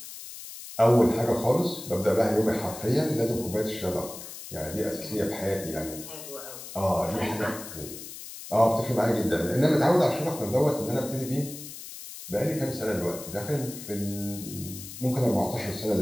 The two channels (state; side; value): noise; left; hiss, 12 dB below the sound